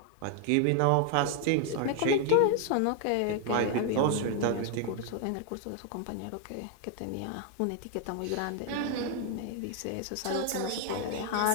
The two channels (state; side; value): different; both; correlation 0.01